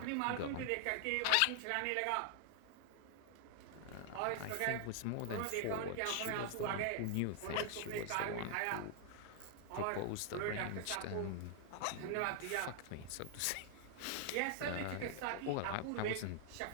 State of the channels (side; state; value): both; different; correlation 0.00